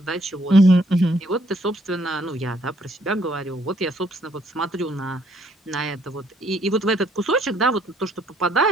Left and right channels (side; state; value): both; normal; correlation 0.67